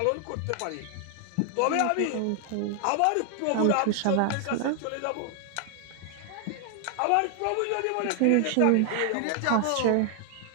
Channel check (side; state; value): both; different; correlation 0.00